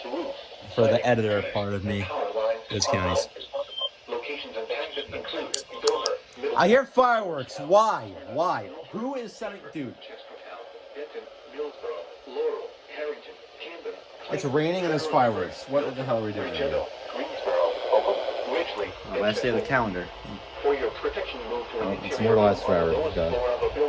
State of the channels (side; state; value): both; identical; correlation 1.00